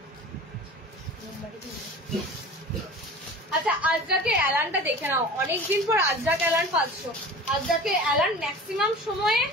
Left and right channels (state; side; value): normal; both; correlation 0.38